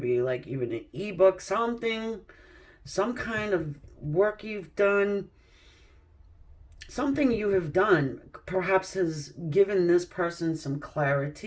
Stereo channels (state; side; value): identical; both; correlation 1.00